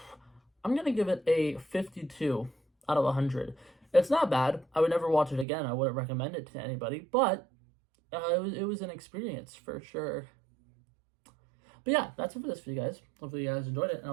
gonna give it a 52 out of 100. It's not bad. I would never watch it again. I wouldn't recommend it to anybody, but it was an experience for sure. But yeah, that's it for this video, guys. Hopefully you guys enjoyed it, and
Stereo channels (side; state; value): left; drops out; at 5.5 s